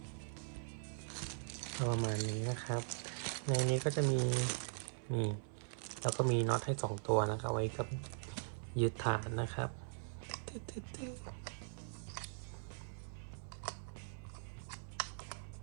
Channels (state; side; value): silent; left; 50 dB below the other